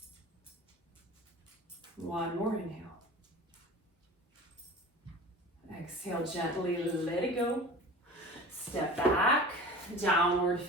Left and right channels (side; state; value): both; normal; correlation 0.38